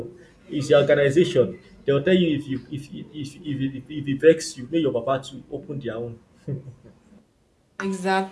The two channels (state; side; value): identical; both; correlation 1.00